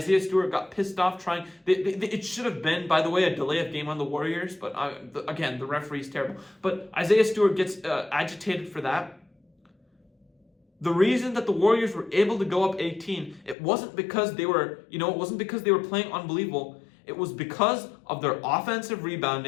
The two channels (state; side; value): drops out; right; at 13.6 s